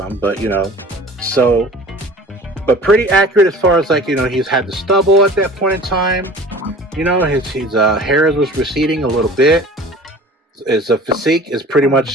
but you know, so. But pretty accurate as far as, like, you know, he's had the stubble at that point in time. You know, his hair was receding a little bit. His physique is pretty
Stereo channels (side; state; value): both; normal; correlation 0.43